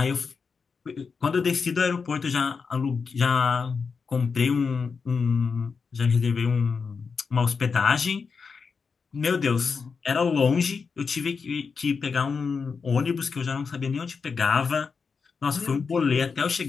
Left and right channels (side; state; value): right; quieter; 5.3 dB